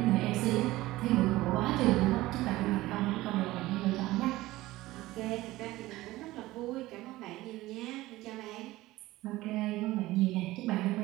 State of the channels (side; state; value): left; quieter; 17.8 dB